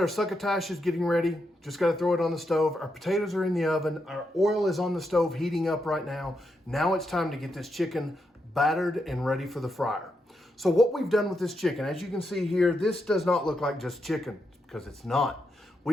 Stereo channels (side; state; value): both; normal; correlation 0.83